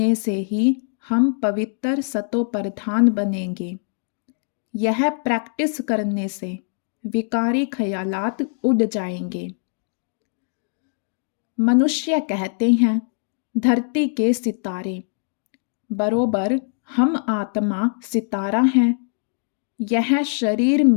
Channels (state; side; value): silent; right; 64 dB below the other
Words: से ही हम पवित्र सतो प्रधान बनेंगे। यह प्रैक्टिस करने से विकारी ख्यालात उड़ जाएंगे। मनुष्य कहते हैं, धरती के सितारे, बरोबर हम आत्मा सितारा हैं। यह शरीर